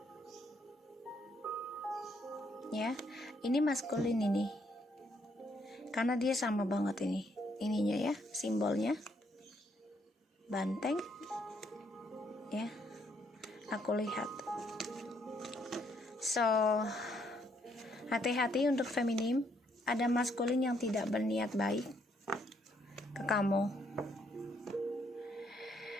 ya. Ini maskulin ini karena dia sama banget ininya ya, simbolnya banteng ya, aku lihat. So hati-hati untuk feminim, ada maskulin yang tidak berniat baik ke kamu.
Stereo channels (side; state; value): both; normal; correlation 0.72